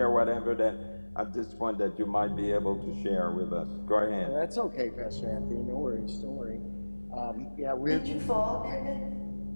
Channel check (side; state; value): both; inverted; correlation -1.00